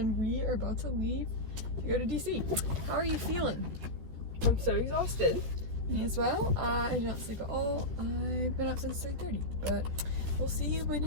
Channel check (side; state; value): left; late; 13 ms